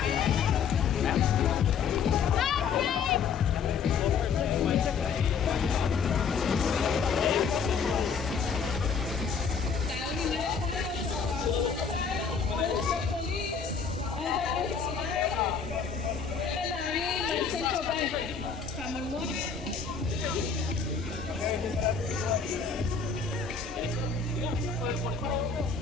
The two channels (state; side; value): quieter; right; 6.1 dB